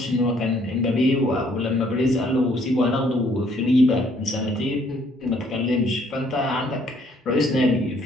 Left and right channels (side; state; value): both; normal; correlation 0.64